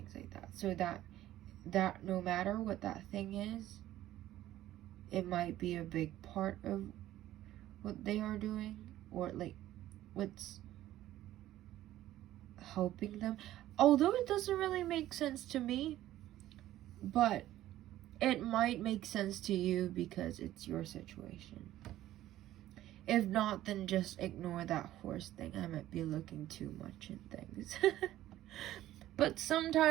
like that. So that no matter what that thing is, it might be a big part of what they are doing, or like what's helping them. Although it doesn't really make sense to me, but it might make sense to you because it's your situation. If not, then just ignore that horse thing. I might be looking too much in things. But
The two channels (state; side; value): quieter; left; 14.0 dB